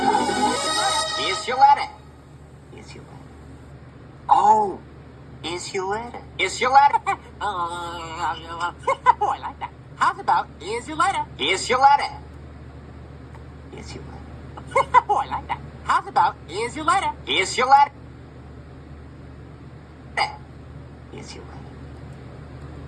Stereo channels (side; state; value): both; identical; correlation 1.00